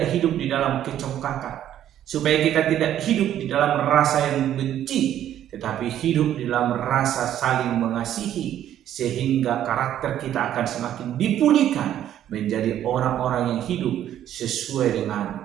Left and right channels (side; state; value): left; quieter; 11.3 dB